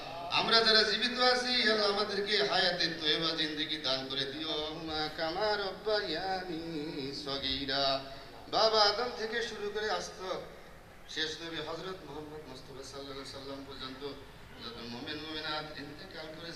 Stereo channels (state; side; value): identical; both; correlation 1.00